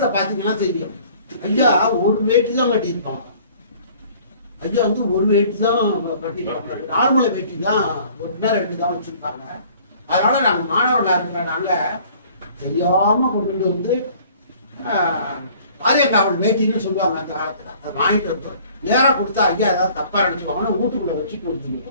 பாத்தீங்கன்னா தெரியும். ஐயா ஒரு வேட்டி தான் கட்டியிருப்பாங்க. ஐயா வந்து ஒரு வேட்டி தான் கட்டிருப்பாங்க. நார்மல் வேட்டி தான் 1 தான் வச்சிருப்பாங்க. அதனால நாங்க மாணவர்களா இருக்கிற நாங்க தெரியாம கொண்டு வந்து பாரியக்காவல் வேட்டின்னு சொல்லுவாங்க அந்த காலத்துல. அதை வாங்கிட்டு வந்து நேரம் கொடுத்தா ஐயா ஏதாவது தப்பா நினைச்சுவாங்கன்னா வீட்டுக்குள்ள வச்சு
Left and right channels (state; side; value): inverted; both; correlation -0.53